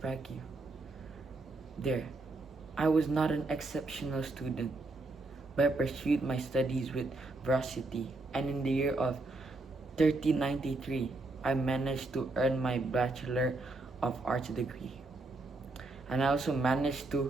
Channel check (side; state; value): left; quieter; 3.1 dB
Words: There, I was not an exceptional student, but I pursued my studies with veracity, and in the year of 1393, I managed to earn my Bachelor of Arts degree. And I also managed